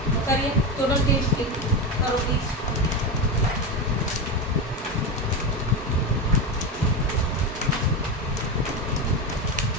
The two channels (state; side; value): normal; both; correlation 0.17